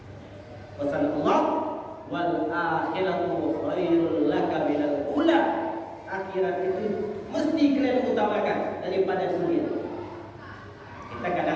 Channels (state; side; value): identical; both; correlation 1.00